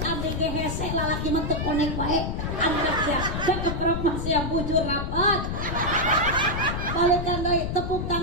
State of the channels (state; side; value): noise; left; rumble, 3 dB below the sound